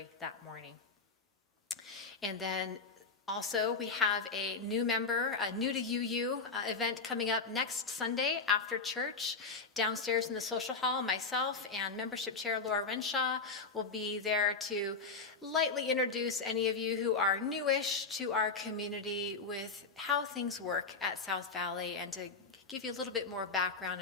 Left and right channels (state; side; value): quieter; right; 4.4 dB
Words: that morning. And then also, we have a new member, a New to UU event coming up next Sunday after church. Downstairs in the social hall, myself and membership chair Laura Renshaw will be there to lightly introduce any of you who are newish to our community with how things work at South Valley, and to give you a little bit more background